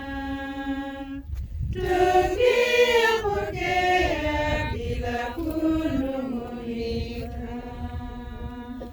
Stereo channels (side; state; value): both; identical; correlation 1.00